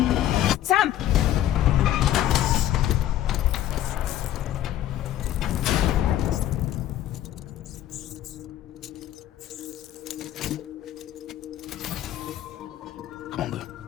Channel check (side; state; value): right; quieter; 12.5 dB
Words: Sam! Come on, Lou.